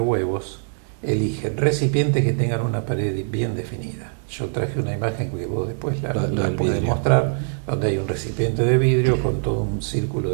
huevos, eligen recipientes que tengan una pared bien definida. Yo traje una imagen que vos después la podés mostrar, donde hay un recipiente de vidrio con todo un círculo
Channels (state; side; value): silent; left; digital silence